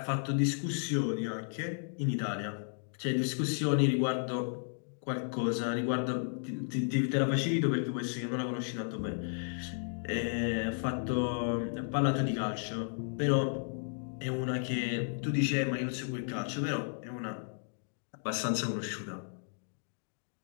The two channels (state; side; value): silent; right; digital silence